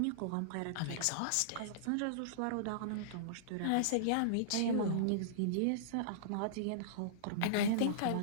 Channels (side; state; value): both; different; correlation -0.03